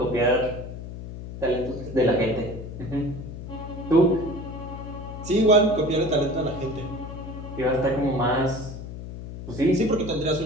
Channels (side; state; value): left; noise; hum, 10 dB below the sound